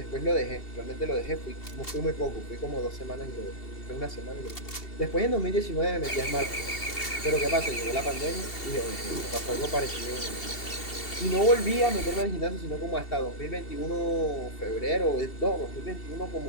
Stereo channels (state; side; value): late; right; 2.7 ms